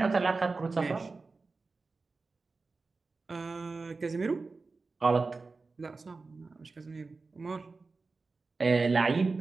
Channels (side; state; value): left; quieter; 4.0 dB